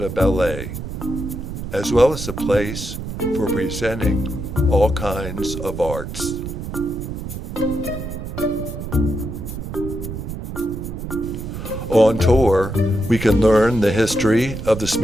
Ballet, as well as a place for presenting all kinds of arts. On tour, we can learn the history of the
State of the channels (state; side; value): noise; right; rumble, 7 dB below the sound